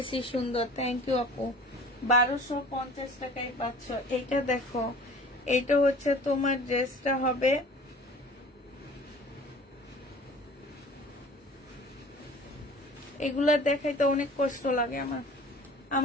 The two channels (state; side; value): normal; both; correlation 0.45